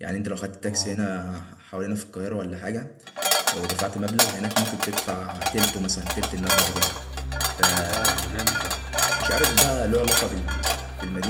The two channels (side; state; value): both; identical; correlation 1.00